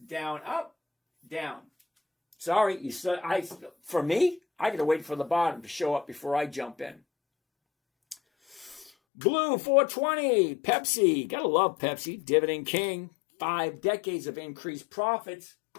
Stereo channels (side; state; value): right; drops out; at 8.9 s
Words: down, up, down. Sorry, for me, I got to wait for the bottom to show up before I jump in. Blue 420, Pepsi. Gotta love Pepsi. Dividend King. 5 decades of increased profits.